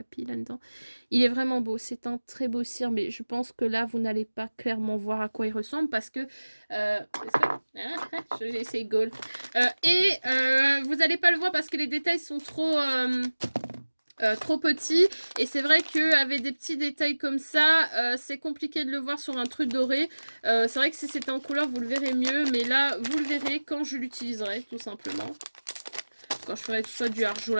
là-dedans? Il est vraiment beau. C'est un très beau cire, mais je pense que là, vous n'allez pas clairement voir à quoi il ressemble, parce que... j'ai essayé Gold. Vous n'allez pas le voir parce que les détails sont trop petit et c'est vrai qu'avec des petits détails comme ça c'est compliqué de le voir sur un truc doré. C'est vrai que si c'était en couleur vous le verrez mieux, mais là vous le verrez quand je l'utiliserai tout simplement, quand je ferai soit du art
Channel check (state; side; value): inverted; both; correlation -1.00